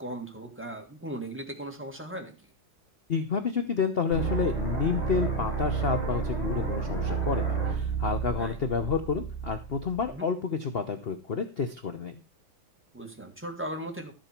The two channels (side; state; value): both; normal; correlation 0.03